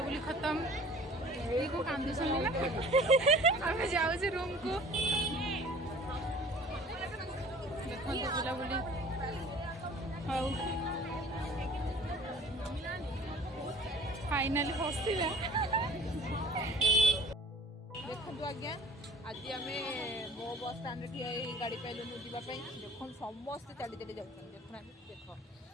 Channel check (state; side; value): normal; both; correlation 0.48